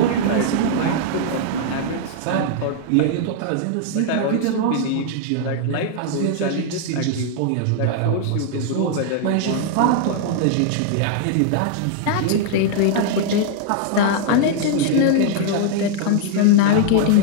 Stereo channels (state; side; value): different; both; correlation 0.00